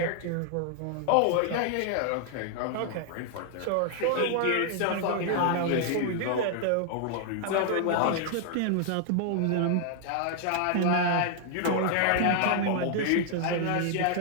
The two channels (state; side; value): different; both; correlation 0.00